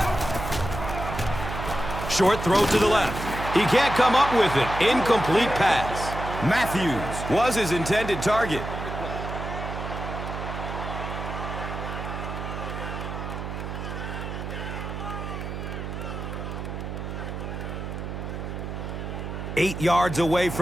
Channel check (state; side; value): noise; right; hum, 6 dB below the sound